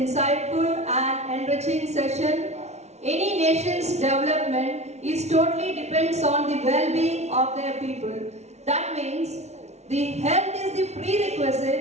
and enriching session. Any nation's development is totally depends on the well-being of their people. That means the health is the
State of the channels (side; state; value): left; late; 0.32 ms